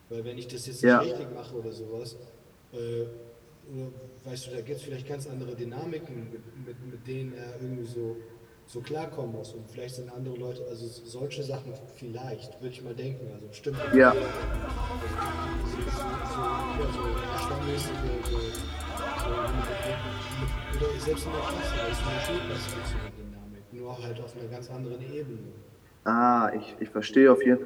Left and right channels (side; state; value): both; identical; correlation 1.00